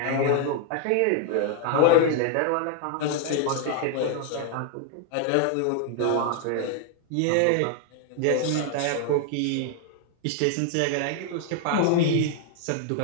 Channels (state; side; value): different; both; correlation 0.00